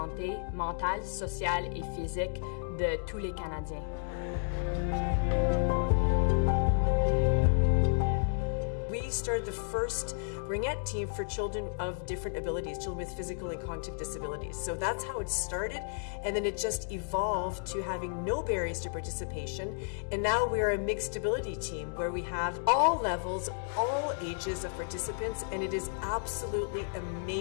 mentale, sociale et physique de tous les Canadiens. We started the first Ringette team for children of different abilities, children with physical and cognitive disabilities. So that's how it started, and then it just evolved to having no barriers to participation. And now we're a mixed ability team where we have all levels, all ages of participants, and it is absolutely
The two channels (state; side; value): silent; right; digital silence